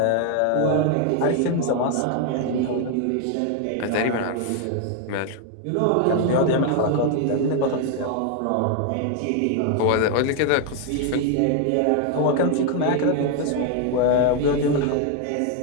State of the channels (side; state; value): both; different; correlation 0.01